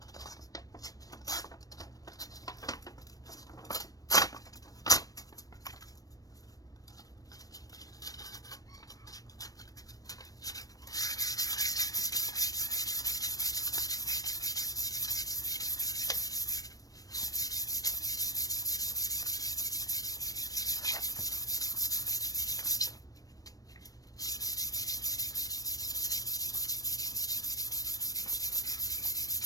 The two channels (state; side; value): late; right; 0.18 ms